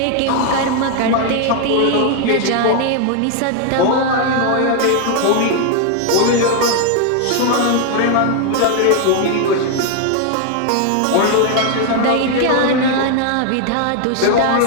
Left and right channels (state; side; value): different; both; correlation 0.01